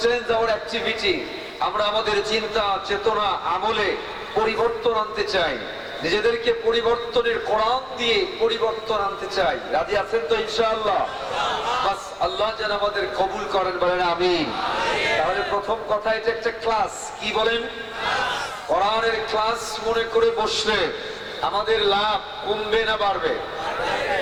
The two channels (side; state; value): both; identical; correlation 1.00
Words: change our activity. আমরা আমাদের চিন্তা চেতনা আমলে পরিবর্তন আনতে চাই, নিজেদেরকে পরিবর্তনের কোরআন দিয়ে পরিবর্তন আনতে চাই। রাজি আছেন তো ইনশাআল্লাহ? বাস আল্লাহ যেন আমাদের কবুল করেন, বলেন আমিন। তাহলে প্রথম কথা, এটা একটা ক্লাস। কি বলেন? কোরআনের ক্লাস মনে করে বসলে আমাদের লাভ কমবে না বাড়বে?